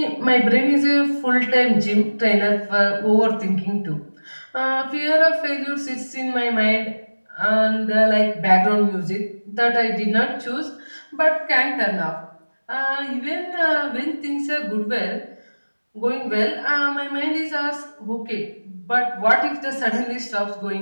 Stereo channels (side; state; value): both; inverted; correlation -1.00